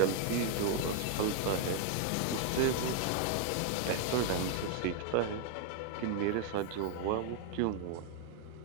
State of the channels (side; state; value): both; different; correlation 0.00